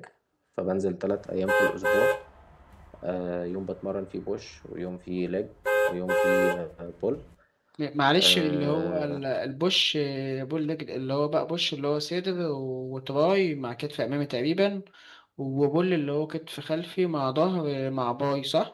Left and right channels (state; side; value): identical; both; correlation 1.00